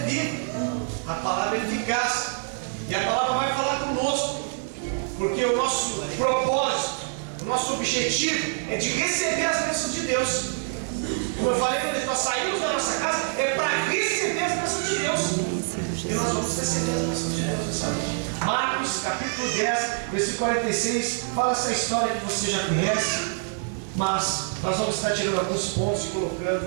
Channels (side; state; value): left; silent; digital silence